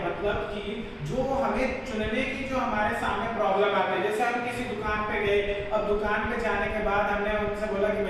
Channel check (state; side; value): identical; both; correlation 1.00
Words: मतलब कि जो हमें चुनने की जो हमारे सामने प्रॉब्लम आती है। जैसे हम किसी दुकान पे गए, अब दुकान पे जाने के बाद हमने उनसे बोला कि